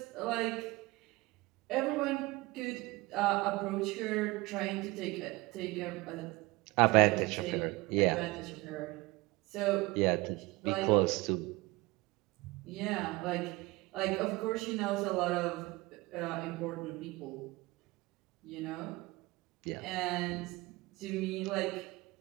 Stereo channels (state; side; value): quieter; left; 22.0 dB